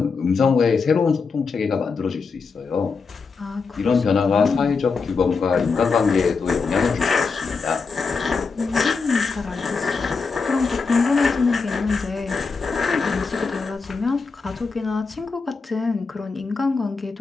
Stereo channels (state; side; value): quieter; right; 4.8 dB